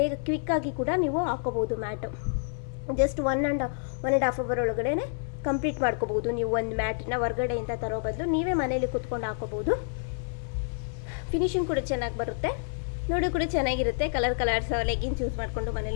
ಕ್ವಿಕ್ಕಾಗಿ ಕೂಡ ನೀವು ಹಾಕೋಬೋದು mat. Just one and half hour ಒಳಗಡೆ ಕಂಪ್ಲೀಟ್ ಮಾಡ್ಕೋಬೋದು. ನೀವು ಒಂದು ಮ್ಯಾಟನ್ನ ಹೊರಗಡೆಯಿಂದ ತರೋ ಬದಲು ನೀವೇ ಮನೇಲಿ ಕುತ್ಕೊಂಡು ಹಾಕೋಬೋದು. ಫಿನಿಶಿಂಗ್ ಕೂಡ ಚೆನ್ನಾಗಿ ಬರುತ್ತೆ, ನೋಡಿ ಕೂಡ ಚೆನ್ನಾಗಿರುತ್ತೆ. ಕಲರ್ಸ್ ಲೆಗಿನ್ಸ್ ಯೂಸ್ ಮಾಡಿಕೊಂಡು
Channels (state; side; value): silent; right; 59 dB below the other